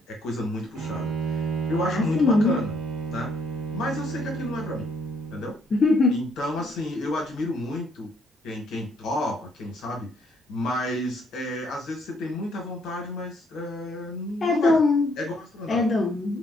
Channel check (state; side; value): normal; both; correlation 0.68